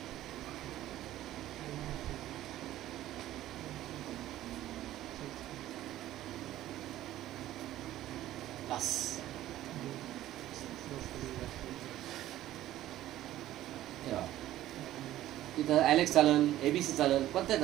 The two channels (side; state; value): left; quieter; 14.0 dB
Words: इथं ॲलेक्स चालेल, ABC चालेल, कोणत्या